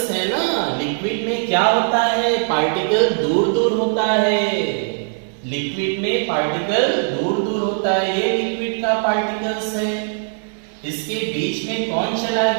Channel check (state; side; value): silent; left; 66 dB below the other